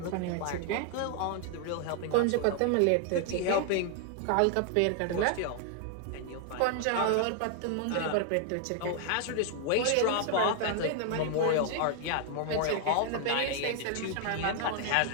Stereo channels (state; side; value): different; both; correlation 0.00